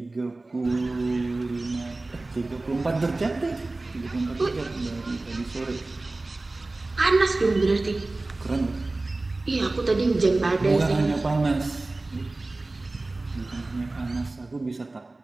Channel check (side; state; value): left; quieter; 3.1 dB